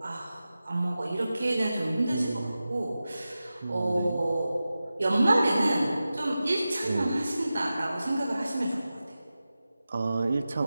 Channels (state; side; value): inverted; both; correlation -0.94